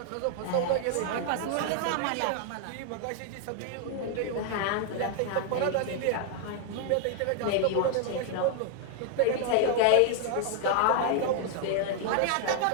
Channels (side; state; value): both; different; correlation 0.00